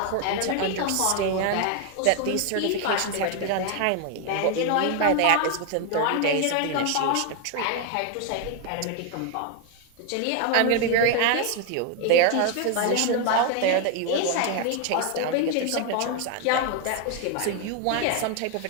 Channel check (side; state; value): both; different; correlation 0.00